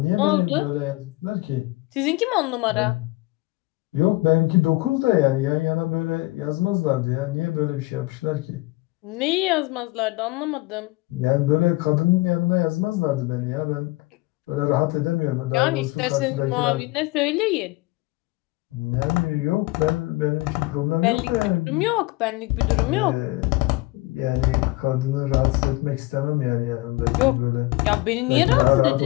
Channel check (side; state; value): right; quieter; 21.5 dB